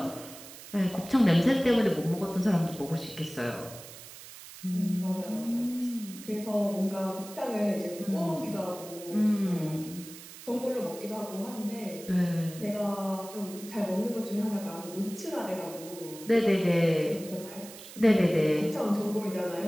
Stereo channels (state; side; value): noise; right; hiss, 15 dB below the sound